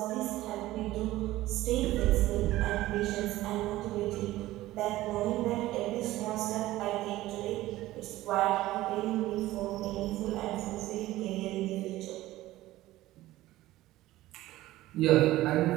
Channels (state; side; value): quieter; left; 16.4 dB